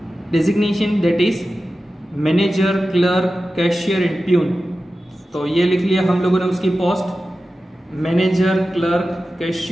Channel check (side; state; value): both; normal; correlation 0.93